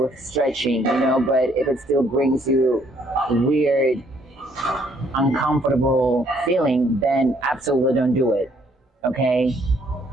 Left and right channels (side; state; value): both; normal; correlation 0.66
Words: stretching, you know, but if it still brings you weird, uncomfortable feeling, then absolutely don't do it. Okay?